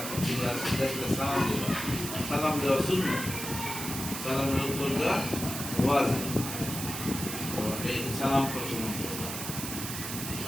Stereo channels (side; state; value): right; noise; hiss, 6 dB below the sound